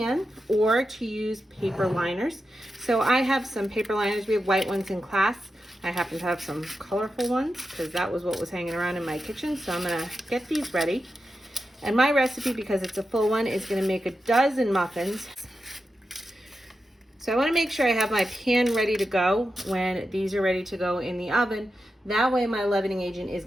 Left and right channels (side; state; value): both; normal; correlation 0.89